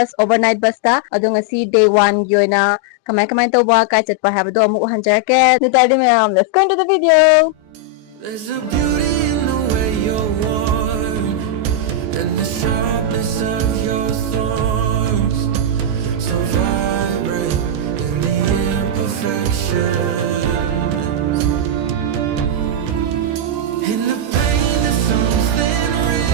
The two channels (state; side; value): late; left; 14 ms